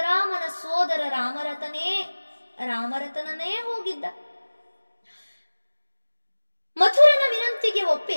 ಸೋದರ ರಾಮರತನನೇ ಹೋಗಿದ್ದ. ಮಥುರನ ವಿನಂತಿಗೆ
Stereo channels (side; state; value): both; inverted; correlation -1.00